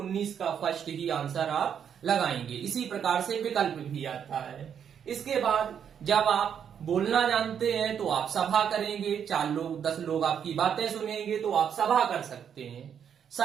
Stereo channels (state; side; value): quieter; left; 8.2 dB